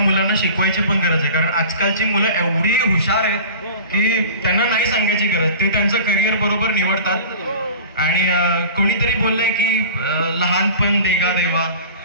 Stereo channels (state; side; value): inverted; both; correlation -0.39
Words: शिकवायची पण गरज आहे, कारण आजकालची मुलं एवढी हुशार आहेत की त्यांना नाही सांगायची गरज. ते त्यांचं करिअर बरोबर निवडतात. आणि कोणीतरी बोललंय की लहानपण देगा देवा.